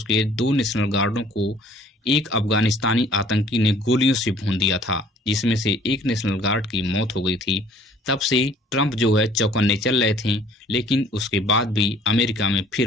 के 2 नेशनल गार्डों को एक अफगानिस्तानी आतंकी ने गोलियों से भून दिया था, जिसमें से एक नेशनल गार्ड की मौत हो गई थी। तब से ट्रंप जो है चौकन्ने चल रहे थे, लेकिन उसके बाद भी अमेरिका में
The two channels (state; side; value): normal; both; correlation 0.55